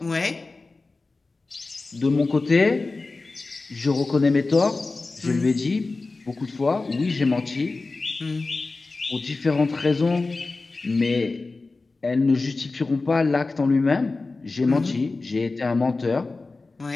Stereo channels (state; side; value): quieter; right; 3.6 dB